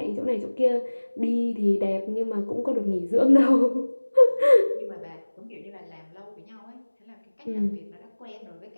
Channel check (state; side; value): inverted; both; correlation -1.00